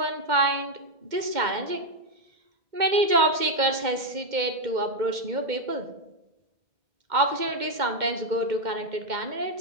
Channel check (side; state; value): left; late; 2.1 ms